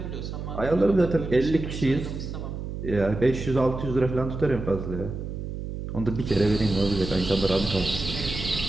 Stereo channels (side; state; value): right; noise; hum, 7 dB below the sound